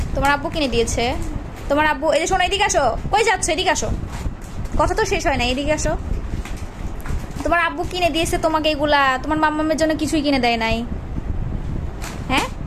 তোমার আব্বু কিনে দিয়েছে? তোমার আব্বু, এই যে শোনো, এদিকে আসো। কই যাচ্ছ? এদিকে আসো, কথা তো শেষ হয় না, এদিকে আসো। তোমার আব্বু কিনে দিয়েছে তোমাকে এগুলা, তোমার মাম্মামের জন্য কিছুই কিনে দেয় নাই? হ্যাঁ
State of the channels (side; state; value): both; identical; correlation 1.00